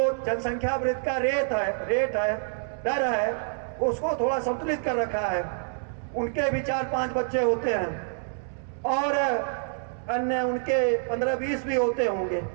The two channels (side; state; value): left; silent; digital silence